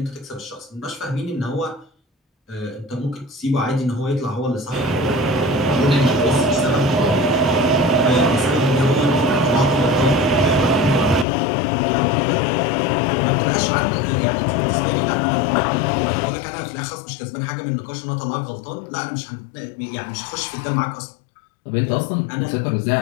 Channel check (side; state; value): right; drops out; at 11.2 s